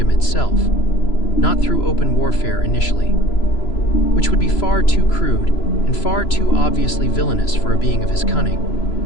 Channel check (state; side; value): late; right; 3.0 ms